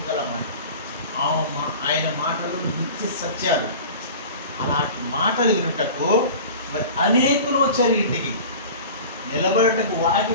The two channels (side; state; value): both; inverted; correlation -0.38